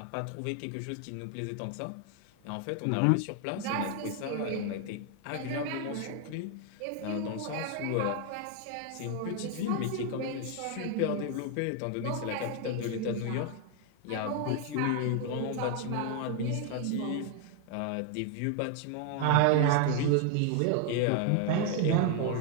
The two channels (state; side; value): different; both; correlation 0.00